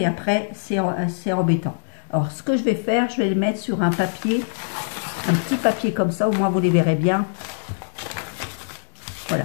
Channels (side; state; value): right; silent; digital silence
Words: après, c'est embêtant. Alors, ce que je vais faire, je vais les mettre sur un papier, un petit papier comme ça, au moins vous les verrez bien.